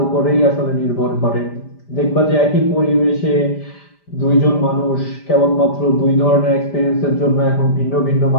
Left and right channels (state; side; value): late; right; 5.0 ms